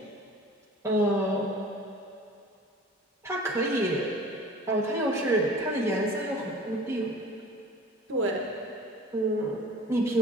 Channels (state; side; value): normal; both; correlation 0.43